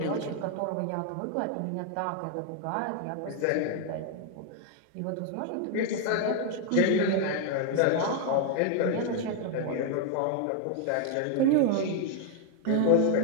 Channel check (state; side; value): different; both; correlation 0.00